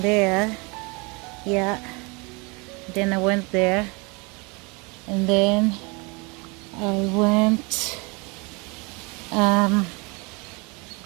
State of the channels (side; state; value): left; quieter; 28.8 dB